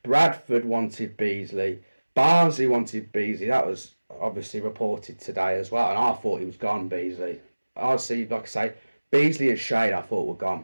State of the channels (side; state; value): both; inverted; correlation -1.00